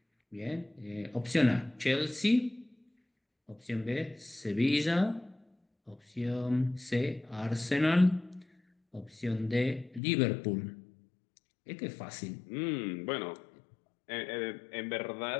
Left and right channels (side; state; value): right; drops out; at 10.0 s